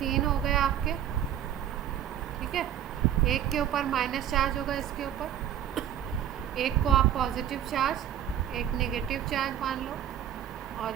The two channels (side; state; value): left; quieter; 10.3 dB